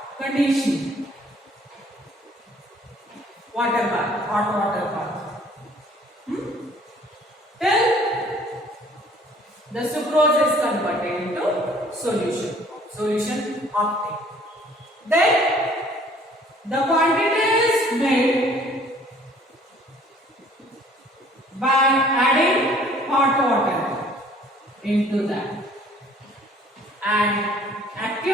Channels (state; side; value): normal; both; correlation 0.56